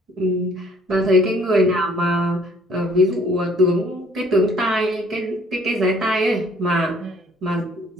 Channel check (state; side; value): normal; both; correlation 0.59